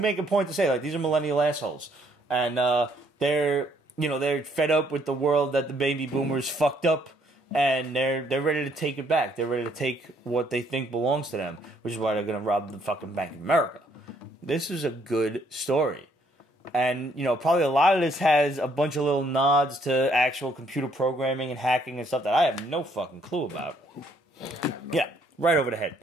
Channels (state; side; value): normal; both; correlation 0.68